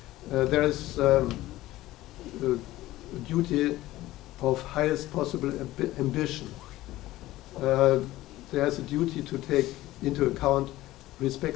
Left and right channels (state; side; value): quieter; right; 16.5 dB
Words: There is a duty of highest possible ambition. There's a duty to take into account